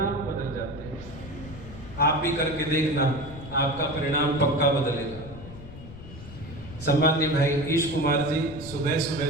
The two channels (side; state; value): left; noise; rumble, 15 dB below the sound